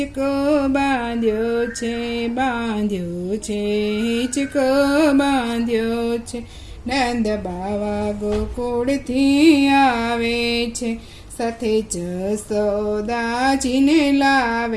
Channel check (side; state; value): both; identical; correlation 1.00